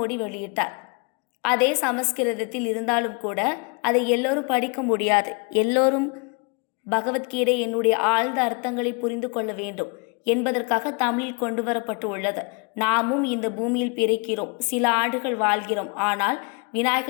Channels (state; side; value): quieter; right; 32.4 dB